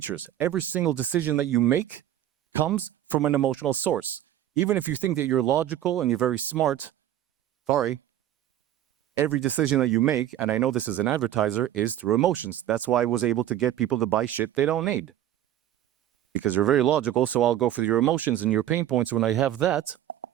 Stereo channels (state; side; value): quieter; left; 12.1 dB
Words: Every single decision that you make comes from an emotional source. Even if you think that you're logical and you're very smart, every decision that you make, and I know this as an advertiser, is through emotions. That's why I was able to get people to buy shit they don't need. Because you're very logical, so I'll go for your emotions and your pain points. When I have that,